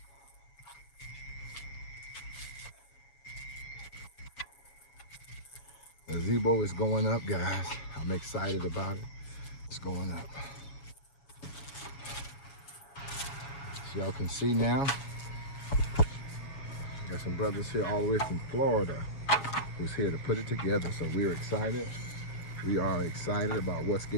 The gazebo is going up, guys. I'm excited about it. It's going up. As y'all can see now, got some brothers here all the way from Florida who's here to put it together. So we're excited. We are excited about what's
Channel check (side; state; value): right; late; 7.4 ms